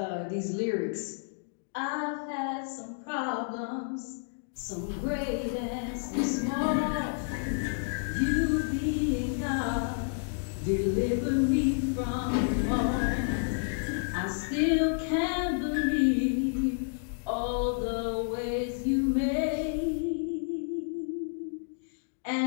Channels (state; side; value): silent; right; digital silence